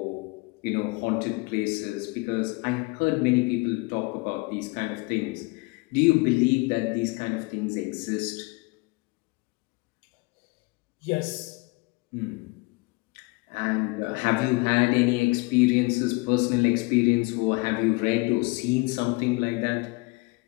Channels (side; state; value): right; quieter; 26.7 dB